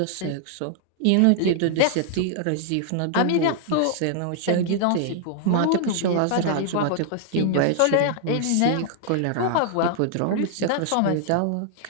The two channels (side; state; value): both; different; correlation -0.01